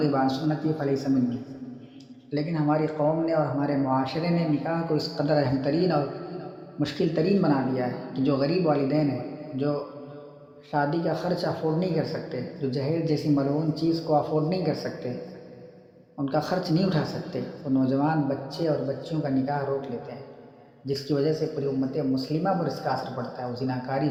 عن سنتی فلیس منی، لیکن ہماری قوم نے اور ہمارے معاشرے نے نکاح کو اس قدر اہم ترین اور مشکل ترین بنا دیا ہے کہ جو غریب والدین ہیں، جو شادی کا خرچ افورڈ نہیں کر سکتے، جو جہیز جیسی ملعون چیز کو افورڈ نہیں کر سکتے، ان کا خرچ نہیں اٹھا سکتے، وہ نوجوان بچے اور بچیوں کا نکاح روک لیتے ہیں، جس کی وجہ سے پوری امت مسلمہ پر اس کا اثر پڑتا ہے۔ وہ زناکاری،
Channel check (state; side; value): identical; both; correlation 1.00